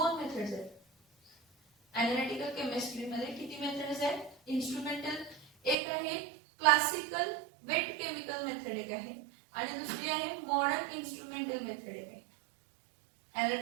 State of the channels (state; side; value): drops out; left; at 5.8 s